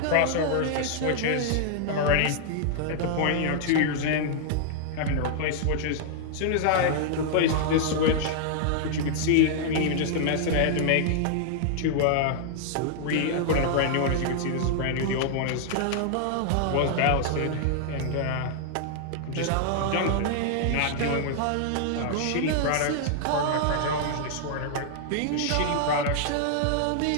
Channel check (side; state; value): both; different; correlation -0.01